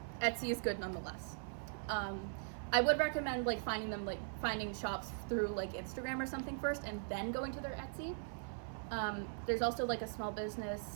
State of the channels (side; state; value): left; silent; 51 dB below the other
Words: Etsy is good nonetheless. I would recommend like finding shops through like Instagram or something first, and then going to their Etsy. There's also like a small